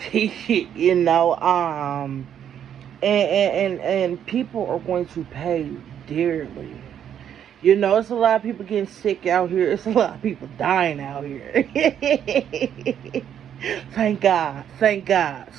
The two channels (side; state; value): left; quieter; 9.4 dB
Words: And people are going to pay dearly. It's a lot of people getting sick out here. It's a lot of people dying out here. Thank God. Thank God.